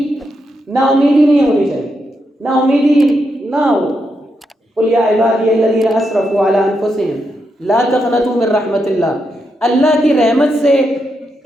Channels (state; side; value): normal; both; correlation 0.83